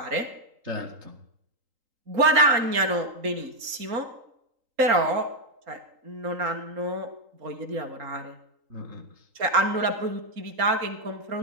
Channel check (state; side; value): late; left; 3.8 ms